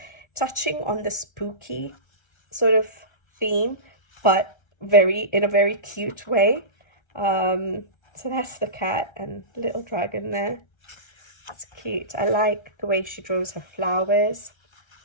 touching on the spooky sort of theme, but in a very cute way. So that's the cat and little dragon there. It's cute. I like the way she draws her flowers.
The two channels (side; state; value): right; late; 1.4 ms